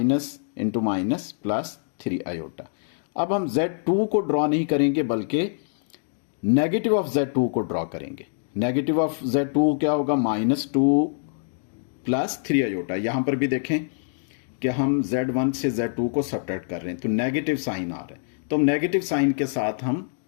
into minus plus 3 iota. अब हम Z2 को ड्रॉ नहीं करेंगे बल्कि नेगेटिव ऑफ Z2 को ड्रॉ करेंगे। नेगेटिव ऑफ Z2 क्या होगा, -2 प्लस 3 आयोटा। यहां पर भी देखें कि हम Z1 से Z2 को सब्ट्रैक्ट कर रहे हैं तो नेगेटिव साइन आ रहा है, तो हम नेगेटिव साइन के साथ हम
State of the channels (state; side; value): silent; right; digital silence